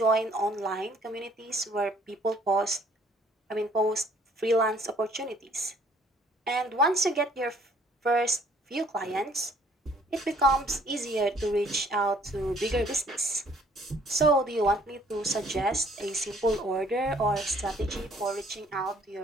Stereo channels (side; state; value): both; normal; correlation 0.60